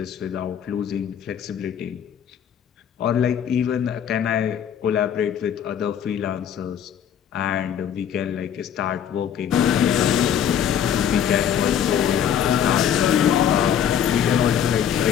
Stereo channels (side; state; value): right; quieter; 9.0 dB